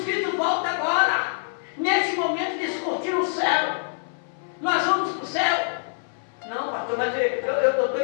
Cristo volta agora, neste momento descortina o céu, nós vamos para o céu? Não, pastor, mas eu estou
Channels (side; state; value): right; silent; 60 dB below the other